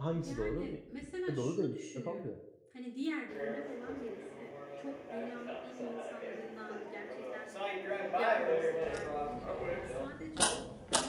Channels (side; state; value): both; identical; correlation 1.00